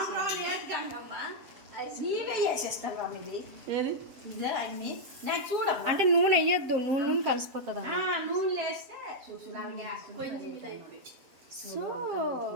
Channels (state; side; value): late; left; 7.5 ms